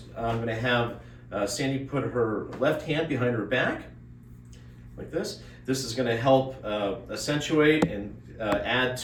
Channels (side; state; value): both; identical; correlation 1.00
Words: I'm going to have Sandy put her left hand behind her back, like this. This is going to help accentuate and add